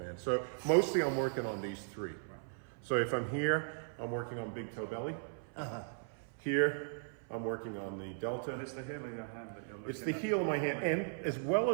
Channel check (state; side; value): silent; left; 53 dB below the other